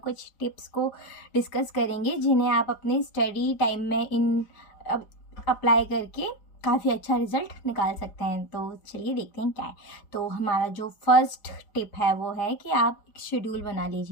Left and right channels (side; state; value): right; late; 4.9 ms